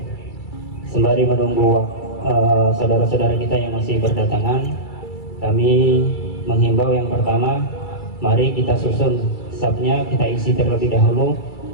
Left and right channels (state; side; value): late; right; 2.3 ms